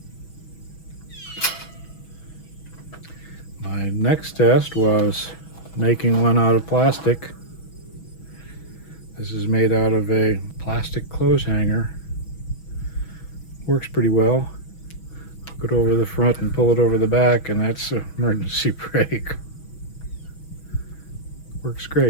My next test was making one out of plastic. This is made out of a plastic clothes hanger. Works pretty well. Put it over the front and pull it over the back, and that's an emergency brake. Works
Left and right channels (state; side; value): late; right; 6.2 ms